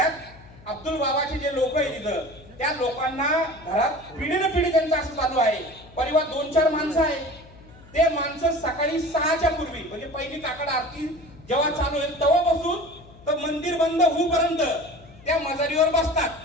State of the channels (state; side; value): noise; left; hum, 22 dB below the sound